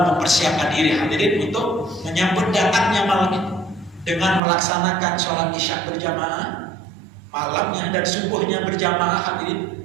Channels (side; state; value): left; drops out; at 4.4 s